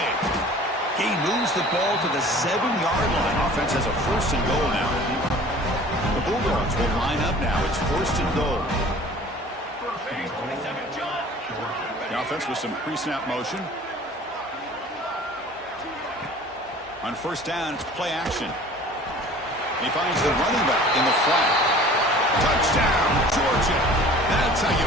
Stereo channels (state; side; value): normal; both; correlation 0.46